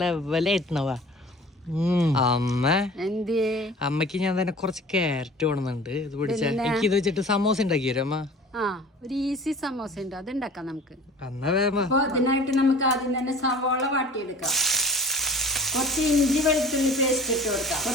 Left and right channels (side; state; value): both; normal; correlation 0.44